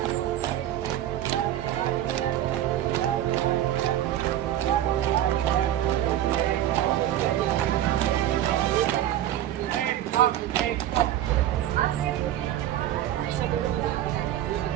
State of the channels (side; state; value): left; quieter; 12.2 dB